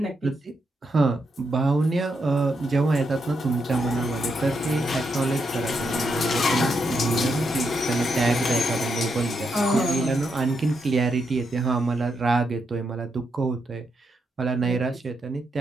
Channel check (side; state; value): both; normal; correlation 0.81